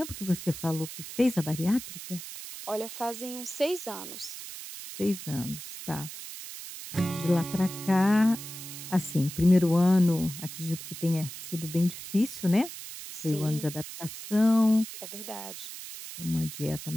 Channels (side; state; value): right; noise; hiss, 11 dB below the sound